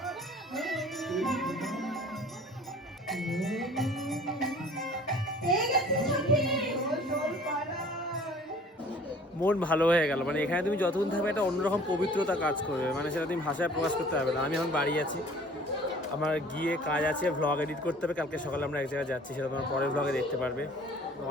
মন ভালো হয়ে গেল। মানে এখানে তুমি যতক্ষণ থাকবে একটা অন্যরকম পবিত্রতা কাজ করবে, মানে সেটা তুমি ভাষায় প্রকাশ করতে পারবে না। আমি এখন বাড়ি আছি, আমার গিয়ে কাজ আছে, ভ্লগ এডিট করতে হবে। কালকে সকালে আমরা এক জায়গায় যাচ্ছি, সেটা তোমার পরের ভ্লগে দেখতে পারবে।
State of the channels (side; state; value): both; normal; correlation 0.50